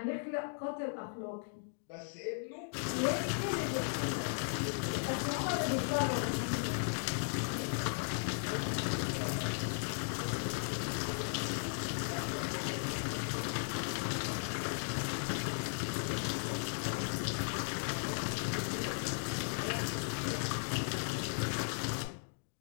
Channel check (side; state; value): right; silent; digital silence